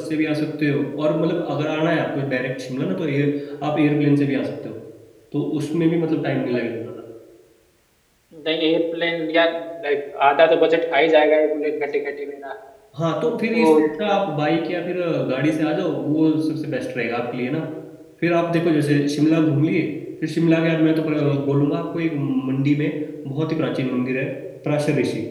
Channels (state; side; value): identical; both; correlation 1.00